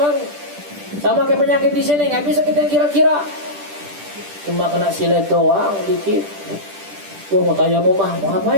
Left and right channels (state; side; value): late; left; 10 ms